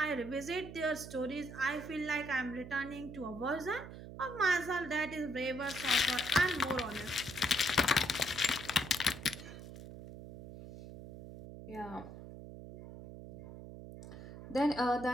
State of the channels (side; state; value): right; noise; hum, 13 dB below the sound